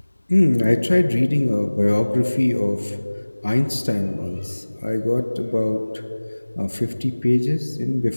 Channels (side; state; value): both; inverted; correlation -1.00